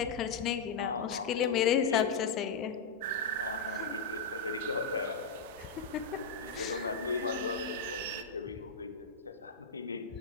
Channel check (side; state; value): right; quieter; 4.5 dB